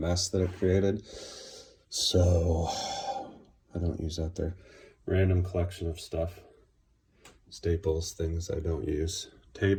that it created. So I don't use that there. Random collection of stuff. Staples, things I don't use.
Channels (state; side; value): identical; both; correlation 1.00